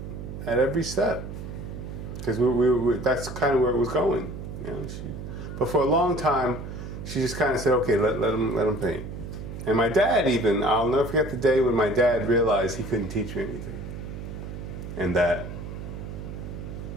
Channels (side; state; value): right; noise; hum, 9 dB below the sound